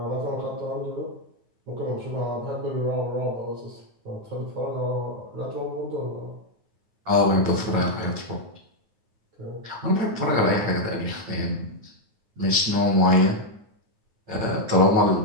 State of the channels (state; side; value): late; left; 9.4 ms